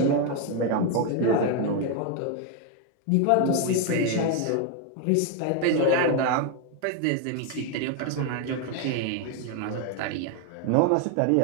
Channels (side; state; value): both; different; correlation 0.01